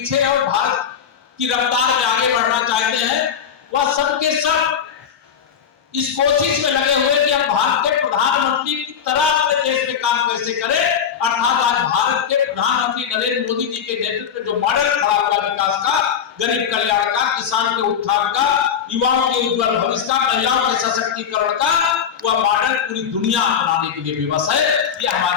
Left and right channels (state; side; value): quieter; right; 7.9 dB